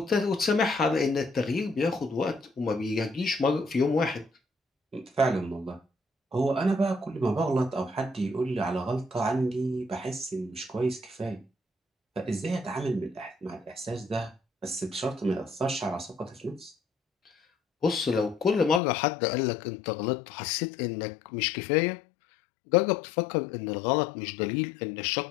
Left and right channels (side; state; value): right; drops out; at 18.8 s